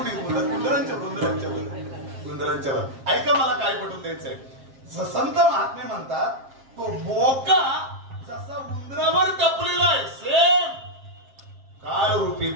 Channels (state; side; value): late; left; 7.4 ms